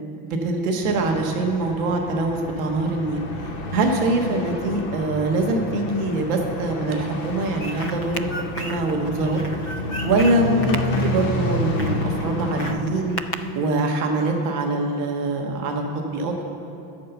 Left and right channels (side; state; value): right; late; 6.0 ms